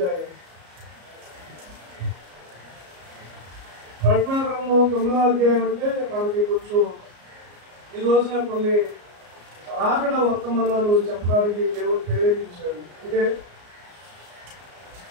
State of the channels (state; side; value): late; left; 34 ms